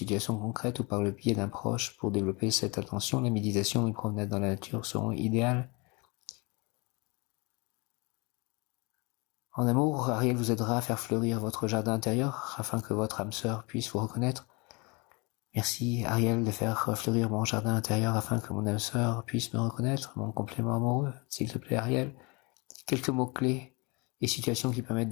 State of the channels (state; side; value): quieter; right; 28.7 dB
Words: concrètes ou par le biais d'un proche. Pour développer cette attention, la méditation et une promenade dans la nature seront idéales. En amour, Ariel vous aidera à faire fleurir votre jardin intérieur afin que votre âme sœur puisse vous reconnaître. Merci Ariel de faire fleurir mon jardin intérieur afin que mon âme sœur puisse me reconnaître, mon complément amoureux. S'il te plaît Ariel, quelques mots-clés et situations qui permettent